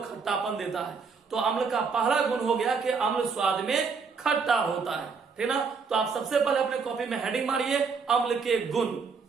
खट्टापन देता है। तो अम्ल का पहला गुण हो गया कि अम्ल स्वाद में खट्टा होता है, ठीक ना। तो आप सबसे पहले अपने कॉपी में हेडिंग मारिए, अम्ल के गुण।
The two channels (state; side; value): quieter; left; 5.2 dB